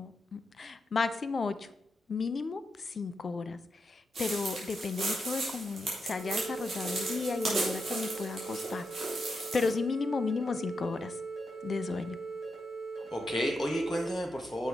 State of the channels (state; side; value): normal; both; correlation 0.85